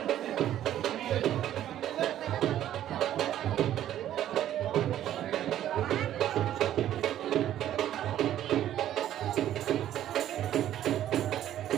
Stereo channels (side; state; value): left; quieter; 11.8 dB